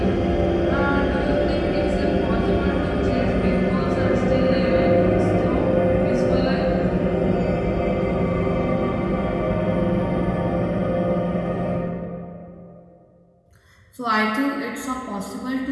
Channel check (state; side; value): identical; both; correlation 1.00